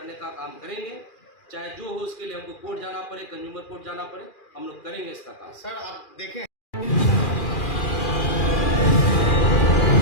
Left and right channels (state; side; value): late; right; 2.4 ms